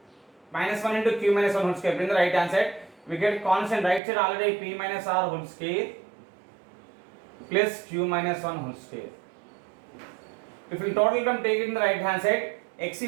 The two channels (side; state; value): left; drops out; at 4.0 s